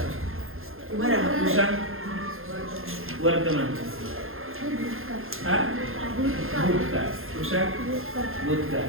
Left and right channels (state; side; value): late; left; 0.60 ms